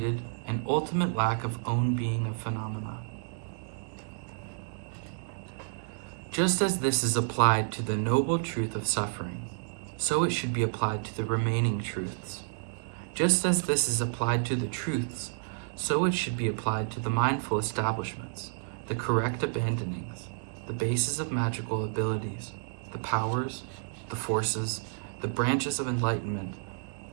an ultimate lack of own being of phenomena. Just as this is applied to the noble truth of suffering, so it should be applied to the remaining truths. Just as this is applied to the truths, so it should be applied to the mindful establishments, the correct abandonings, the basis of magical abilities, the powers, the forces, the branches of enlightenment,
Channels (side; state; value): left; silent; digital silence